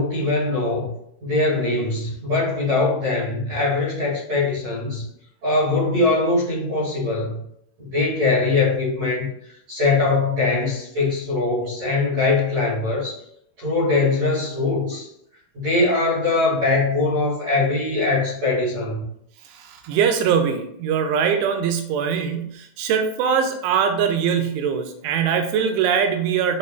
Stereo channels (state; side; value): late; left; 16 ms